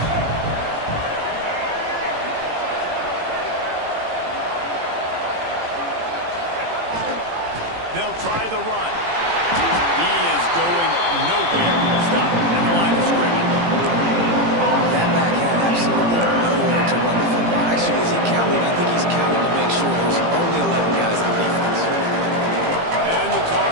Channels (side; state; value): left; late; 18 ms